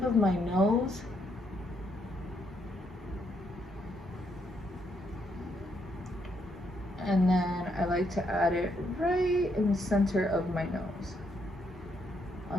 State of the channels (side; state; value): both; normal; correlation 0.75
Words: of my nose. And then I like to add it right in the center of my nose,